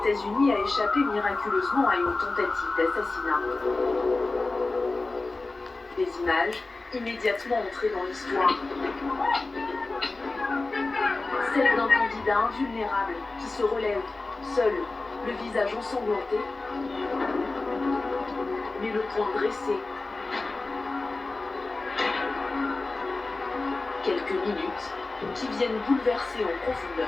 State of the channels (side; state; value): right; quieter; 3.4 dB